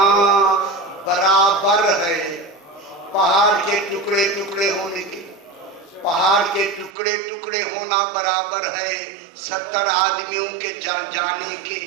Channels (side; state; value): left; drops out; at 6.9 s